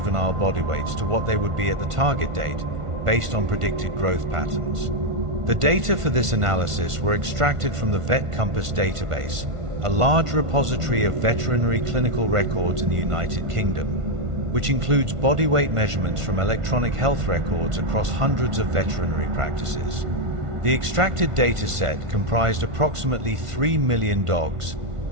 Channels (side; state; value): left; late; 1.5 ms